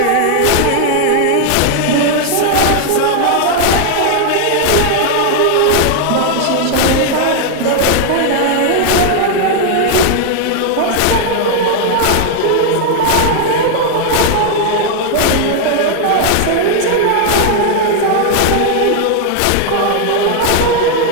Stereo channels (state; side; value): different; both; correlation 0.00